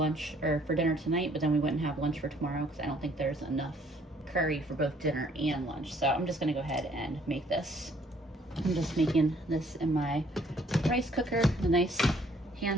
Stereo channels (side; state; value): both; normal; correlation 0.62